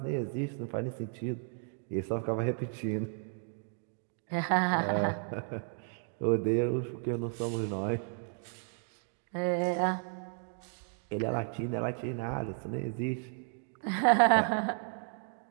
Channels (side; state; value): left; silent; 55 dB below the other